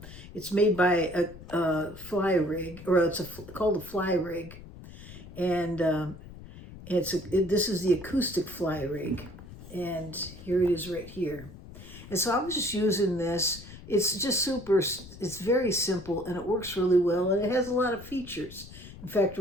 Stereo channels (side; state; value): left; noise; rumble, 16 dB below the sound